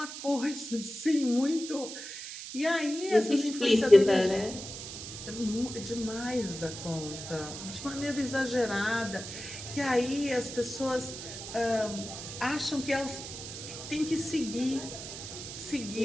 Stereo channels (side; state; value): right; noise; hiss, 9 dB below the sound